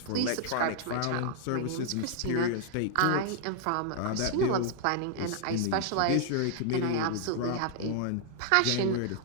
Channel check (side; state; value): both; different; correlation 0.00